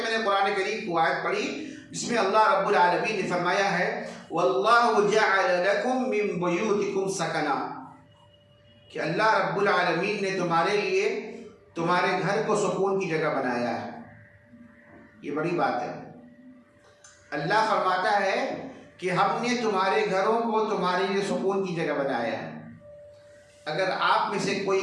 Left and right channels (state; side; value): identical; both; correlation 1.00